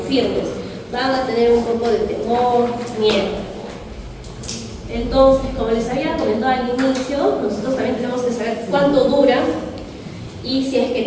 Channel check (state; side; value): identical; both; correlation 1.00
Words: firmes, van a tener un poco de temor, miedo. Entonces, como les había comentado al inicio, nosotros también tenemos que saber cuánto dura y si es que